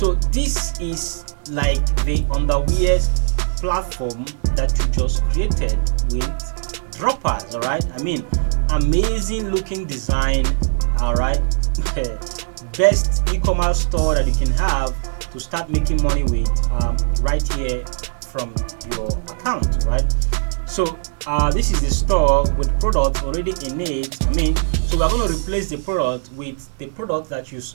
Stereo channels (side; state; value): left; silent; digital silence